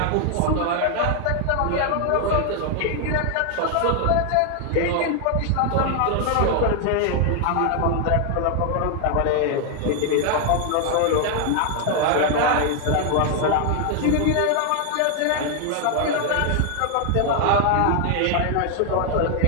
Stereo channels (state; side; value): different; both; correlation 0.00